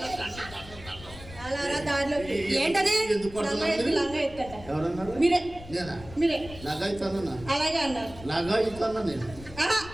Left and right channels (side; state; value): left; noise; rumble, 16 dB below the sound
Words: అలా రా దారిలోకి ఏంటది? ఎందుకు లంగా కొడుతున్నారు ఎత్తు, లంగా ఎత్తట. ఎవరన్నారు మీరే నేనా మీరే నగా ఇస్తానన్నా అలాగే అన్నారు నగా ఇస్తానా నేను ఆహా,